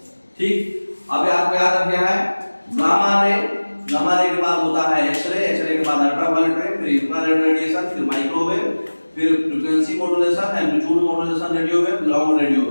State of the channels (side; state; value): both; inverted; correlation -1.00